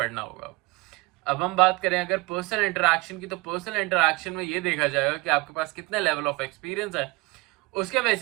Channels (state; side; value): quieter; left; 24.4 dB